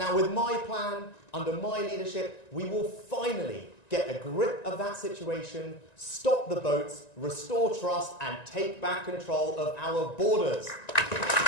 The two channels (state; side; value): late; right; 1.9 ms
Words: with my plan, under my leadership, we will finally get a grip of that situation, stop the boats, restore trust, and take back control of our borders.